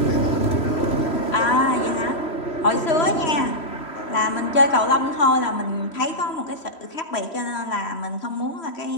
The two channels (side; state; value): right; late; 3.1 ms